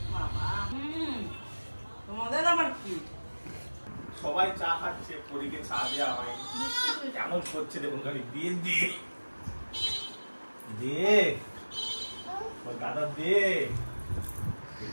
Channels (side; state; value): both; inverted; correlation -1.00